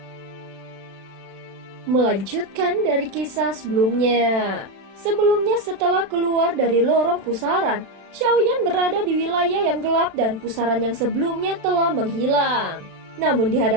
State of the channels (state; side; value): late; left; 36 ms